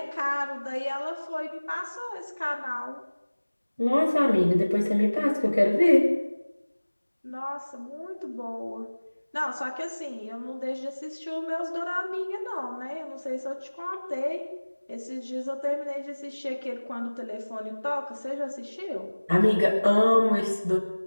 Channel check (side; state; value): both; inverted; correlation -1.00